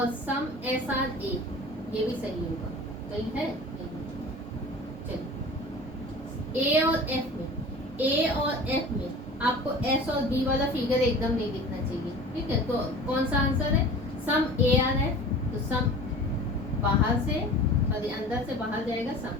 सम एस आर ए ये भी सही होगा। सही है, चलिए ए और एफ में, ए और एफ में आपको एस और बी वाला फिगर एकदम नहीं दिखना चाहिए। ठीक है, तो कौन सा आंसर है सम ए आर है, तो सम बाहर से और अंदर से बाहर जाएगा सम,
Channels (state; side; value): normal; both; correlation 0.40